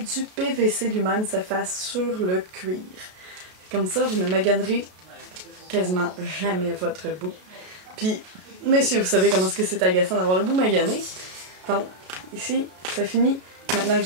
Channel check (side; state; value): left; late; 33 ms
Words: PVC lui-même se fasse sur le cuir. Comme ça, vous ne maganerez quasiment jamais votre bout. Puis, messieurs, vous savez comment est-ce que c'est agaçant d'avoir le bout magané. Donc, ici, ça finit. Maintenant que